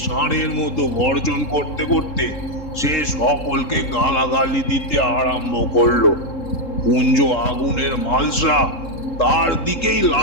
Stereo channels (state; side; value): late; right; 3.7 ms